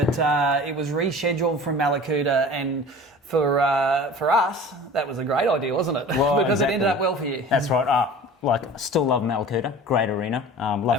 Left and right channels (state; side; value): normal; both; correlation 0.41